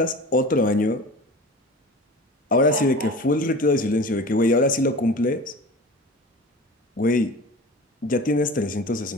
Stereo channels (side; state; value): both; normal; correlation 0.36